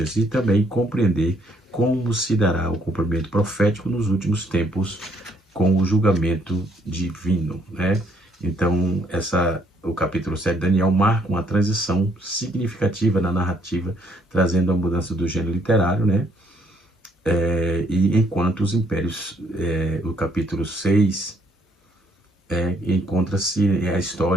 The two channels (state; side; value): normal; both; correlation 0.68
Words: e também compreender como se dará o cumprimento profético nos últimos tempos com o julgamento divino, né? Então, o capítulo 7 de Daniel marca uma transição significativa na narrativa, trazendo a mudança do gênero literário, né? E enquanto os impérios, o capítulo 6, encontra-se a